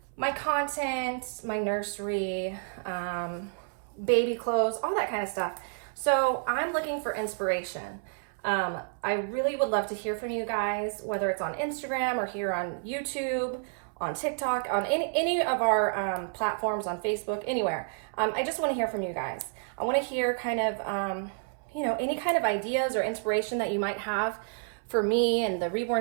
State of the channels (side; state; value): left; silent; 58 dB below the other